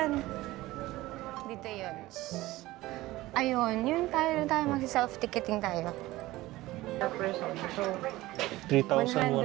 Dito yun. Ayun, yun tayo magsi-self-ticketing tayo. Per person. So, 3,000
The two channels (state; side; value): quieter; left; 18.0 dB